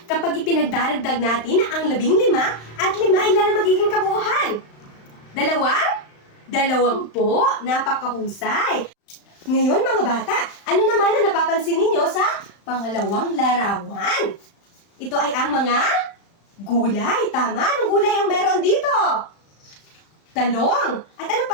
kapag ipinagdaragdag natin ang 15 at 5, ilan ang magiging kabuuhan? 2? 20. Napakahusay. Ngayon mga bata, ano naman ang napapansin ninyo sa pangalawang larawan? Ito ay ang mga gulay. Tama, anong gulay ang meron dito? Talong. At ano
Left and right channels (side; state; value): right; late; 35 ms